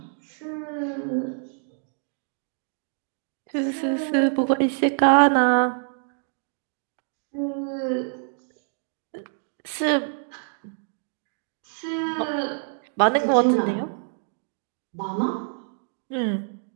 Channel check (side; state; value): left; silent; 61 dB below the other